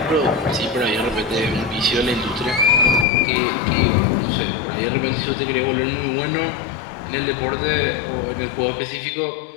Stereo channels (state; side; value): drops out; right; at 3.1 s